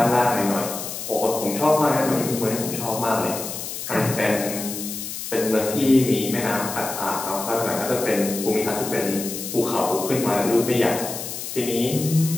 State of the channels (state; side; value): noise; left; hiss, 7 dB below the sound